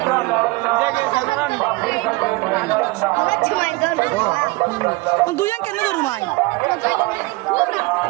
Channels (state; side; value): quieter; left; 22.8 dB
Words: দুজন কেন ধরু মাই